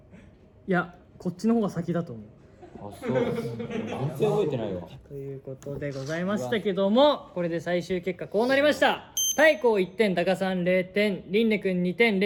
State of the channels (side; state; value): both; identical; correlation 1.00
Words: れ？いや、こっちの方が先だと思う。あ、そう。全然覚えてないわ。ということでございましたけども、これで最終結果こうなりました。太閤1点、タカさん0点、リンネ君2点、